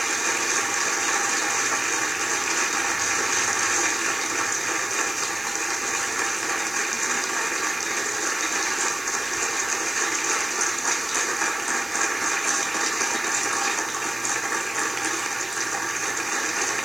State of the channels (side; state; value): right; noise; hiss, 16 dB below the sound